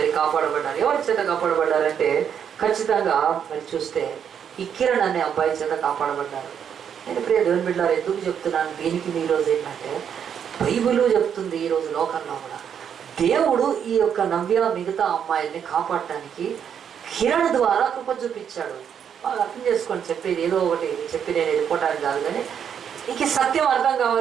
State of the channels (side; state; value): left; quieter; 8.2 dB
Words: కాపాడబడ్డారు. ఎవరి చేత కాపాడబడ్డారంటే ఖచ్చితంగా మరి చూస్తే ఈ కిరణ్ అనే అబ్బాయి చేత కాపాడబడ్డారు. నేను ప్రియ దేవుని బిడ్డలారా ఎందుకు చెప్తున్నాను దీనికి, ఈరోజు ఏంటంటే బైబిల్ చెప్తుంది ఈరోజు లోకంలో కూడా దేవుడు ఈ యొక్క నవ్య మిగతా అమ్మాయిల్ని కాపాడటానికి కిరణ్ ద్వారా కృప చూపించాడు. బాగా అర్థం చేసుకోండి, చెప్పేది ఏదో ఒకటి చెప్పి నేను వెళ్ళిపోవటానికి కాదు, కానీ ఇంక సత్యం అర్థం